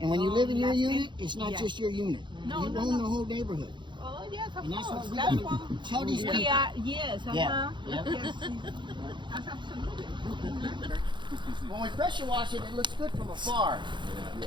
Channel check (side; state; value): left; late; 0.23 ms